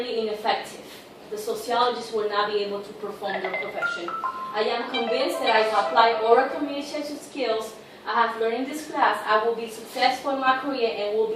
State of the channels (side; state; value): both; identical; correlation 1.00